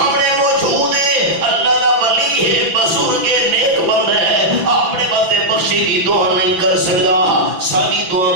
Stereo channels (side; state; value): left; late; 6.0 ms